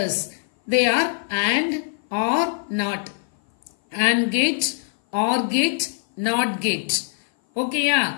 they are and, or, not. And gate, or gate, not gate. Okay,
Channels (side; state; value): right; silent; 57 dB below the other